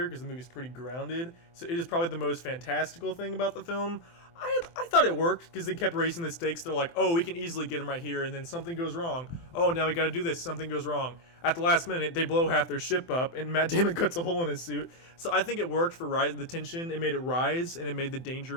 because the movie's pretty grounded. So it is probably the most fantastical thing about the film. I thought it worked because they kept raising the stakes. They're like, oh, we can easily get him right here, and then something goes wrong. Oh, now we got to do this. Something goes wrong. At the last minute, they blow half their ship up, and Matt Damon cuts a hole in his suit. So I think it worked for the tension. It made it rise, and it made the danger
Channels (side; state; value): right; late; 24 ms